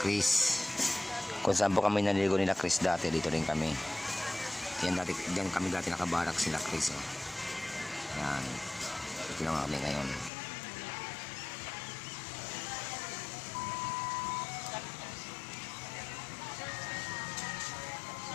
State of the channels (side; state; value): right; drops out; at 10.3 s